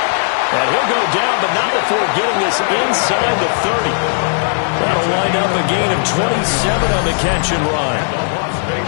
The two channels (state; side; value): silent; right; digital silence